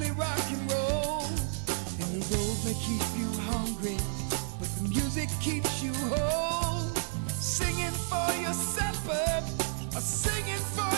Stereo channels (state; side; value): silent; left; digital silence